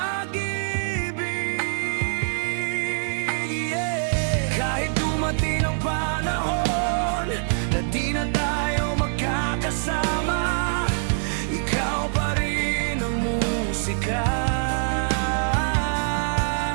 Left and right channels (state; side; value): silent; left; digital silence